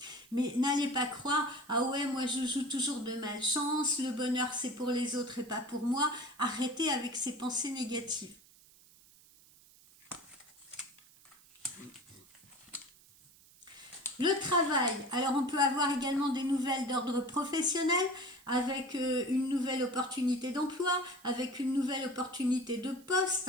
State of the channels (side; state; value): right; noise; hiss, 26 dB below the sound